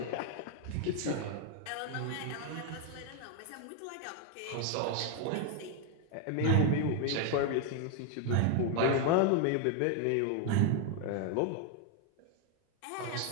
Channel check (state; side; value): different; both; correlation 0.01